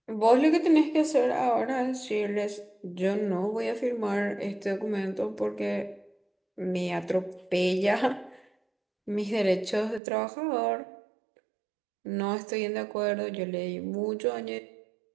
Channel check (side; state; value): left; drops out; at 10.0 s